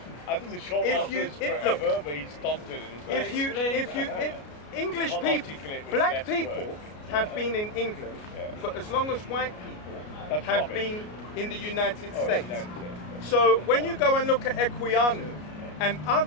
I think the short answer is forever, but he's stunted in his way. English people, black people have been in England for as long as white people have been in the United States. So when you go and look at Equiano and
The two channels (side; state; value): right; late; 33 ms